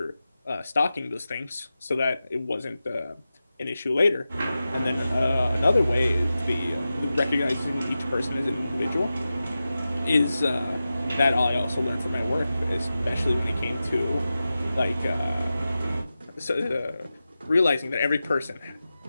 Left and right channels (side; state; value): both; inverted; correlation -0.93